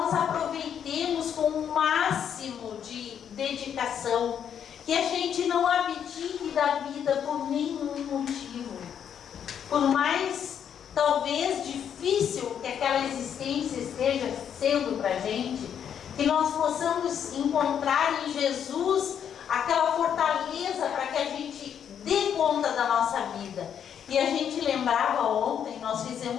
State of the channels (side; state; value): right; quieter; 8.6 dB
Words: aproveitemos com o máximo de dedicação, que a gente não abdique da vida por nenhum motivo. Por mais, talvez, difícil que aquela existência esteja sendo para a gente, que nós possamos encontrar em Jesus aquela fortaleza para que a gente dê conta da nossa vida. E a gente lembrava ontem, nós